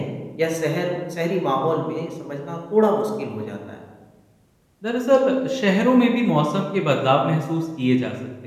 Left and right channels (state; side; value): identical; both; correlation 1.00